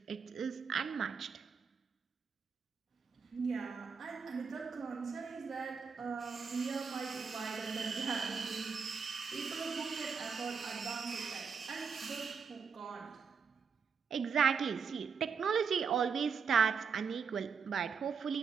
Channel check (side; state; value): left; quieter; 6.0 dB